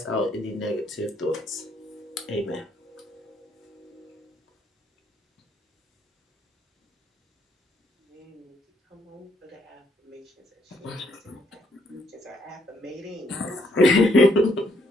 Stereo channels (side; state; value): both; normal; correlation 0.70